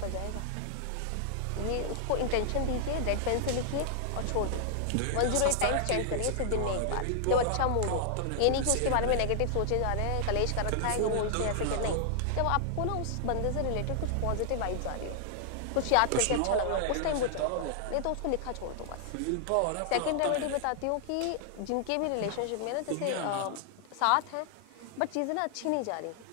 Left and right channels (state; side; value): different; both; correlation -0.01